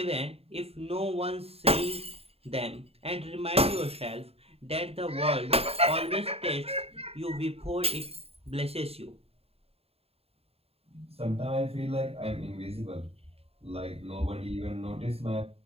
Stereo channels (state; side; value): late; left; 0.29 ms